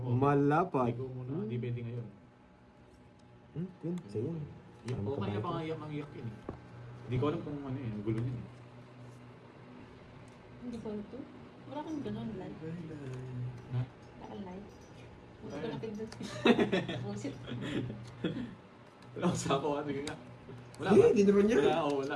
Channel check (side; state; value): both; identical; correlation 1.00